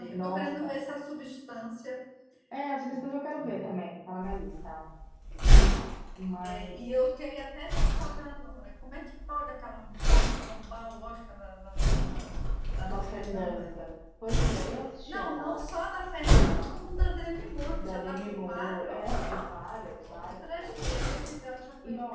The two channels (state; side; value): identical; both; correlation 1.00